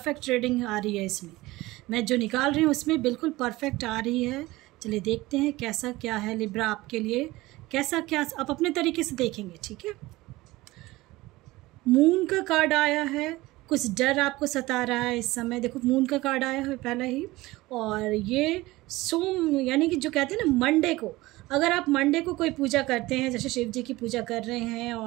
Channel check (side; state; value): left; quieter; 19.4 dB